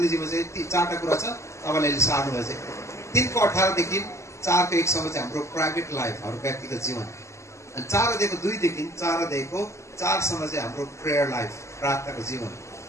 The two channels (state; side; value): late; right; 0.14 ms